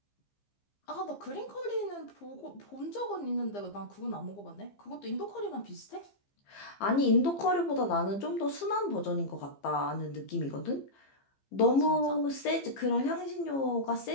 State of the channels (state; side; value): late; right; 15 ms